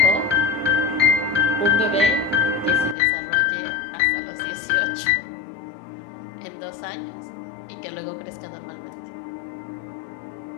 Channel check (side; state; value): right; drops out; at 3.0 s